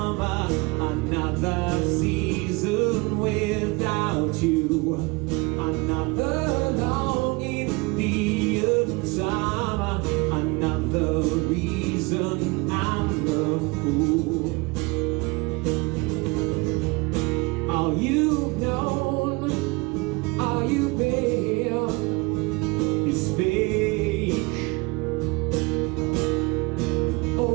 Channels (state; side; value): quieter; left; 26.5 dB